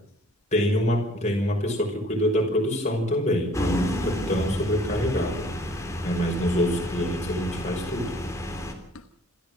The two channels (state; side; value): normal; both; correlation 0.56